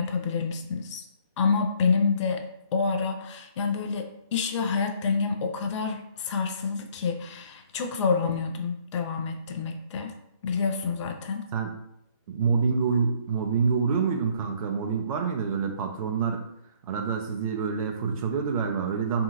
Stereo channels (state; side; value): inverted; both; correlation -0.59